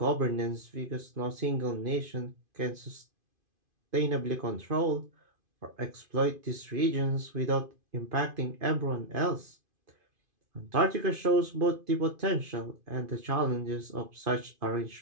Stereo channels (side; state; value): left; late; 2.5 ms